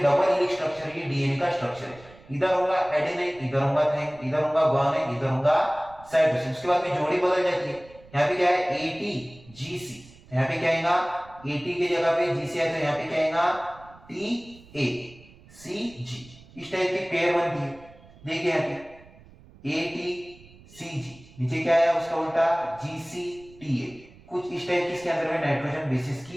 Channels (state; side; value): noise; right; rumble, 23 dB below the sound